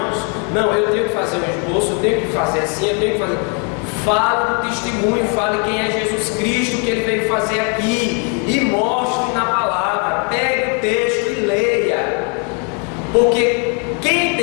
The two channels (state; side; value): quieter; right; 37.6 dB